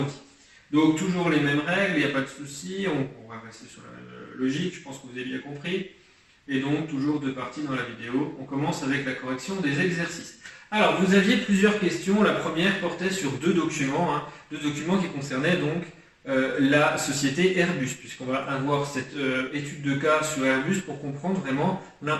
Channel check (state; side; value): identical; both; correlation 1.00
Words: Donc toujours les mêmes règles, il n'y a pas de souci, on va rester sur la même logique, je pense que vous avez bien compris. Et donc toujours deux parties dans la vidéo. On commence avec la correction des exercices. Alors vous aviez plusieurs questions, la première portait sur deux documents qui concernaient donc la société Airbus, puisqu'on va avoir cette étude de cas sur Airbus pour comprendre vraiment